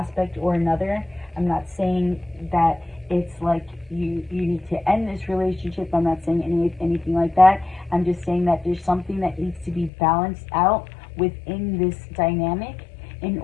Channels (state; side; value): drops out; right; at 9.9 s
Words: or another. I'm not saying that it's like you need to end this relationship. I'm not saying anything like that. I'm just saying that there's something that needs to be balanced out within this dynamic, in